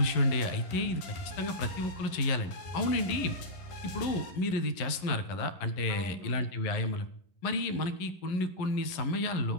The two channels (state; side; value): late; right; 11 ms